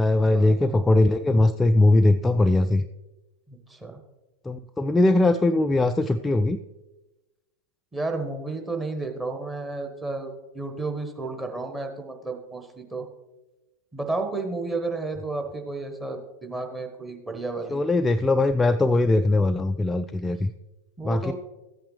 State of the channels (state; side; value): normal; both; correlation 0.90